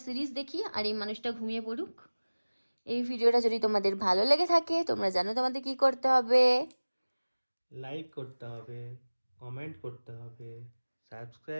সিরিজ দেখি আর এই মানুষটা ঘুমিয়ে পড়ুক। এই ভিডিওটা যদি তোমাদের ভালো লেগে থাকে, তোমরা জানো তোমাদের কি করতে হবে। লাইক করতে হবে, কমেন্ট করতে হবে,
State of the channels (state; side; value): inverted; both; correlation -1.00